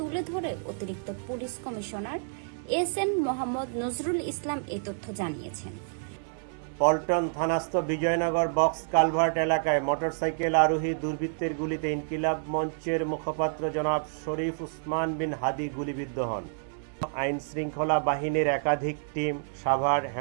ধরে অতিরিক্ত police commissioner S N. Mohammad Nazrul Islam এ তথ্য জানিয়েছেন। পল্টন থানাস্থ বিজয়নগর বক্স কালভার্ট এলাকায় মোটরসাইকেল আরোহী দুর্বৃত্তের গুলিতে ইনকিলাব মঞ্চের মুখপাত্র জনাব শরীফ উসমান বিন হাদী গুলিবিদ্ধ হন। আইন শৃঙ্খলা বাহিনীর একাধিক টিম সাভার,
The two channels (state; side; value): silent; left; digital silence